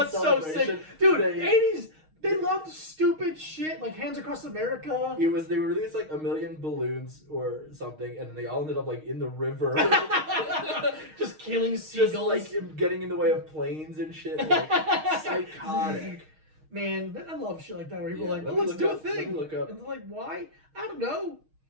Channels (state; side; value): late; left; 6.4 ms